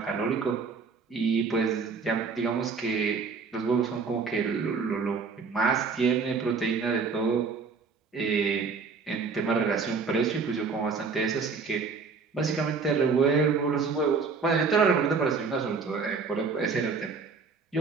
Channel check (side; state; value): left; quieter; 5.0 dB